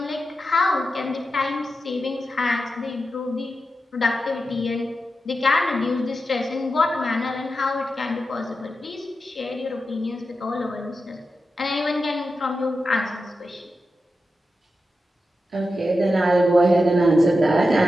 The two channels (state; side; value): normal; both; correlation 0.90